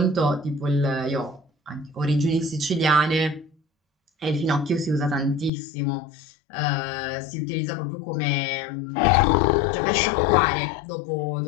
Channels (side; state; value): right; drops out; at 5.5 s